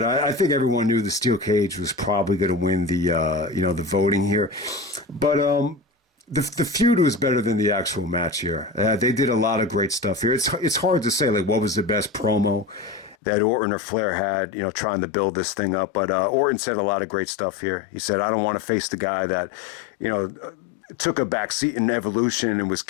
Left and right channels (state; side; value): drops out; right; at 13.2 s